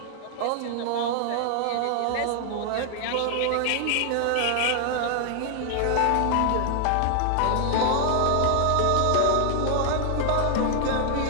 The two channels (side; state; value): both; different; correlation 0.00